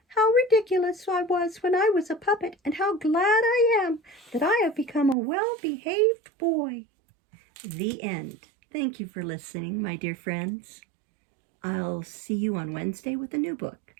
"How ridiculous I was when I was a puppet, and how glad I am that I have become a well-behaved boy." The end. Thank you for listening, my dear friends. I'll see you on Wednesday with a new book.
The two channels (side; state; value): left; drops out; at 5.2 s